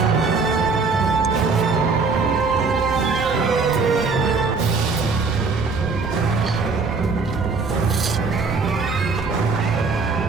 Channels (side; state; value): left; quieter; 4.4 dB